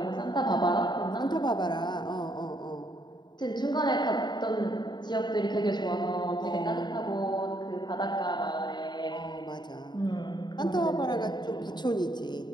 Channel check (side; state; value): right; late; 0.21 ms